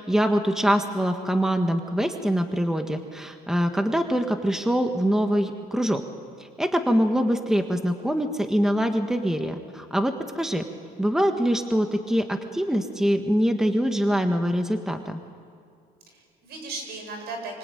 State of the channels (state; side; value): normal; both; correlation 0.92